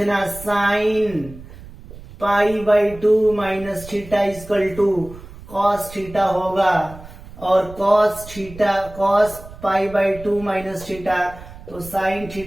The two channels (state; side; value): noise; right; rumble, 17 dB below the sound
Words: साइन पाई/2 minus theta equal to cos theta होगा, और cos पाई/2 माइनस थीटा तो साइन